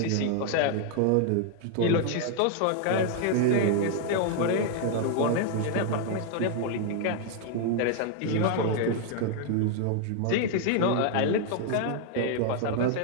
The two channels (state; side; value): different; both; correlation 0.00